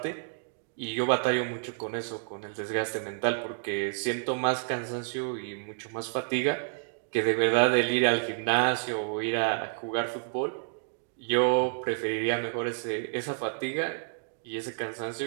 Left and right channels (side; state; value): left; silent; digital silence